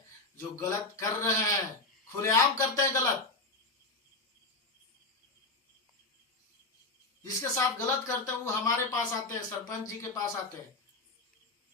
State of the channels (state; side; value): quieter; right; 3.3 dB